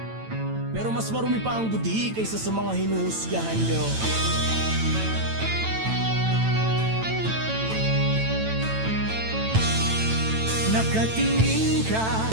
Pero mas marumi pa ang budhi kaysa sa mga hinuhusgahan nyo. Nakatingin ka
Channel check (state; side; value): late; left; 9.0 ms